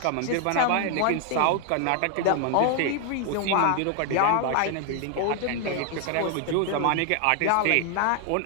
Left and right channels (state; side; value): different; both; correlation 0.00